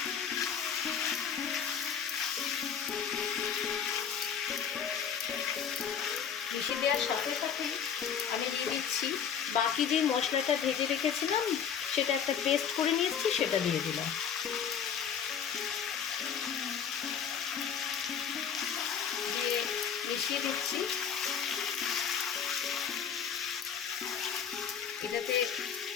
মিশিয়ে দেওয়ার সাথে সাথে আমি দিয়ে দিচ্ছি বাকি যে মশলাটা ভেজে রেখেছিলাম, সেটা একটা পেস্ট করে নিয়েছি, সেটা দিয়ে দিলাম। দিয়ে মিশিয়ে দিচ্ছি। এটাতে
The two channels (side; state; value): right; quieter; 7.7 dB